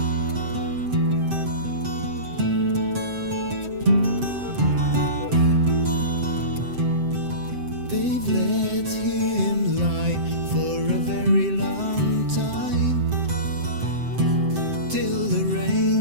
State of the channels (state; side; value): late; left; 7.7 ms